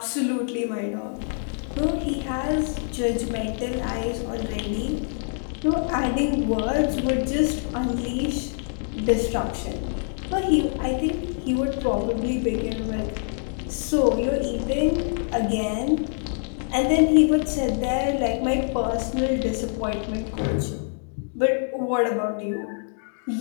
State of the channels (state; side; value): silent; right; 58 dB below the other